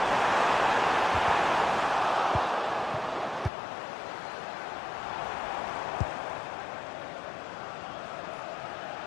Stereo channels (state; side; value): drops out; right; at 3.5 s